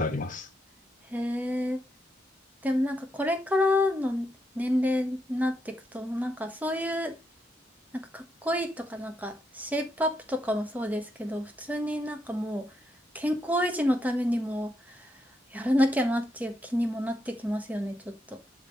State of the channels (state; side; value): normal; both; correlation 0.81